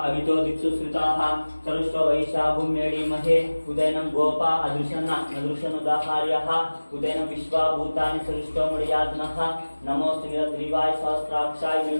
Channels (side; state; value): both; inverted; correlation -1.00